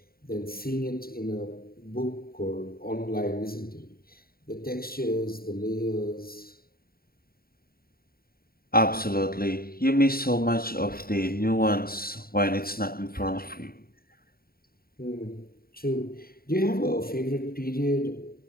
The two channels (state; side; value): late; right; 0.43 ms